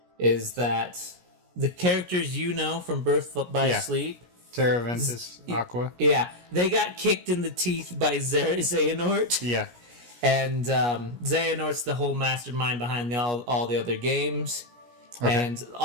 is that the characters you know from Birth by Sleep Terra, Ventus, Aqua. Yeah, they got kicked in the teeth by Xehanort. Yeah. And Xehanort's the whole mastermind behind all the other games. Okay. And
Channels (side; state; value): left; late; 17 ms